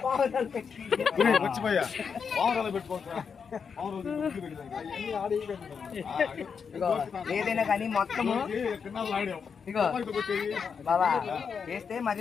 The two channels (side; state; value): right; quieter; 6.2 dB